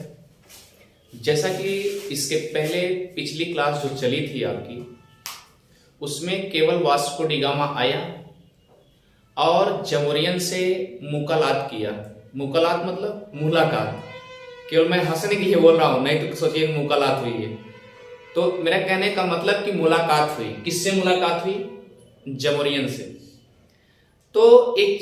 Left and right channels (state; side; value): identical; both; correlation 1.00